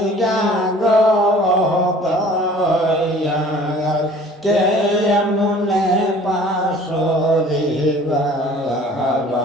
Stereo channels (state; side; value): normal; both; correlation 0.49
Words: গো দয়াল, কেমনে পাশরে